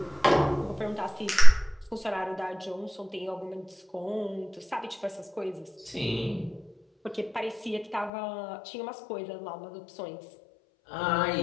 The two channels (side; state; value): right; drops out; at 8.1 s